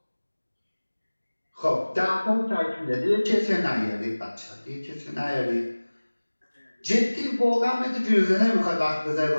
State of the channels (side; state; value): both; inverted; correlation -1.00